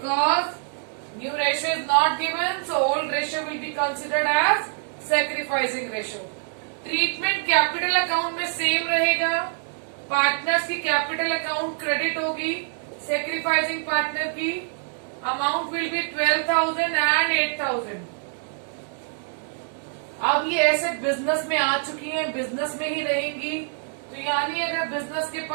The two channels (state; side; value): silent; left; 62 dB below the other